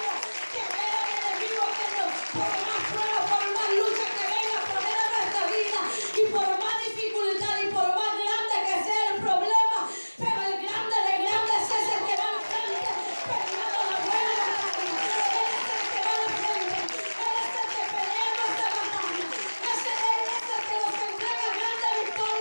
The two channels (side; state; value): both; inverted; correlation -1.00